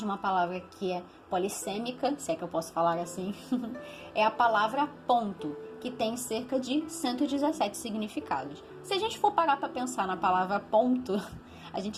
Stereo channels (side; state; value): both; identical; correlation 1.00